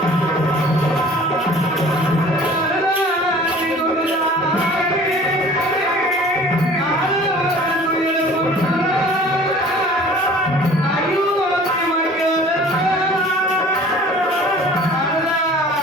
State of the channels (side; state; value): both; normal; correlation 0.47